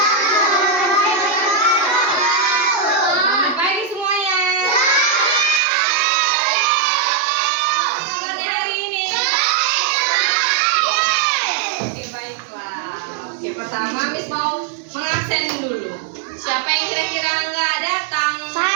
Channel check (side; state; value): left; drops out; at 5.6 s